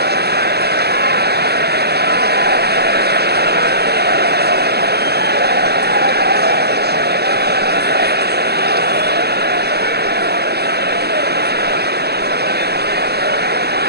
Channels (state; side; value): late; left; 0.47 ms